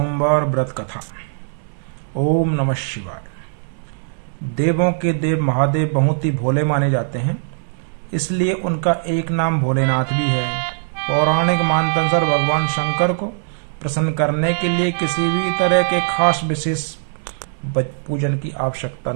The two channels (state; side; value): silent; left; digital silence